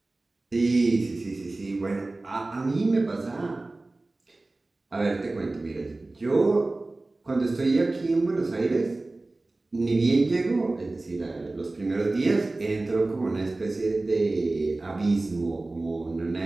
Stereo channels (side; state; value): left; quieter; 3.0 dB